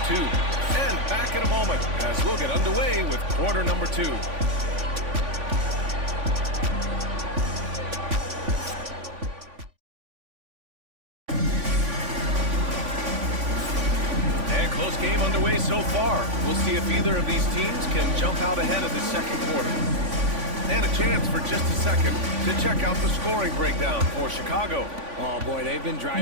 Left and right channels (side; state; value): left; late; 3.5 ms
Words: 2. And back in a moment as we'll get underway with quarter number 2. Game underway so far. We'll see if either of these teams can jump out ahead of the second quarter. And a chance for just a second to check out the scoring breakdown for Chicago. Oh boy, they've been